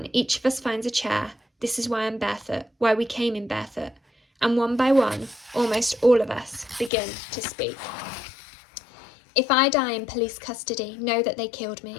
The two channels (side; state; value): right; drops out; at 6.9 s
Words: each of us finds a chair. This is why I'm barefoot, why we came in barefoot. And one by one, almost all of us begin to speak. If I die in police custody, know that they killed